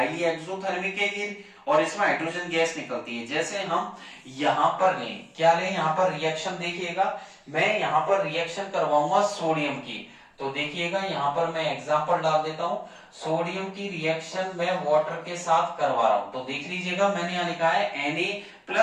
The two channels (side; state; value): both; identical; correlation 1.00